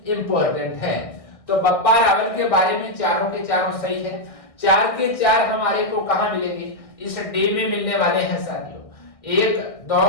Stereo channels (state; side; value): late; right; 1.6 ms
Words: इंपॉर्टेंट है। तो बप्पा रावल के बारे में चारों के चारों सही है। 4 के 4 हमारे को कहां मिलेंगे? इस डे में मिलने वाले हैं साथियों। 1,